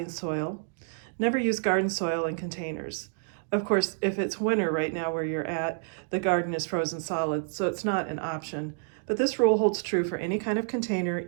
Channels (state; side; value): silent; left; 59 dB below the other